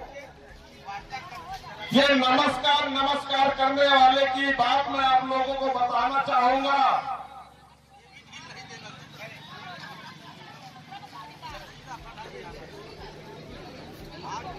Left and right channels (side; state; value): both; identical; correlation 1.00